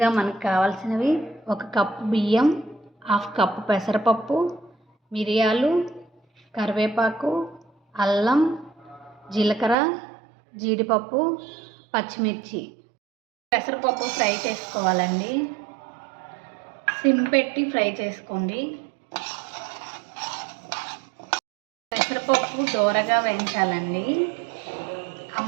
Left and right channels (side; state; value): left; drops out; at 9.8 s